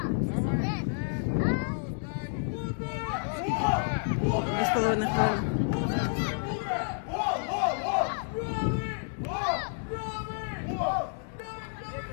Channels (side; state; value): right; silent; 58 dB below the other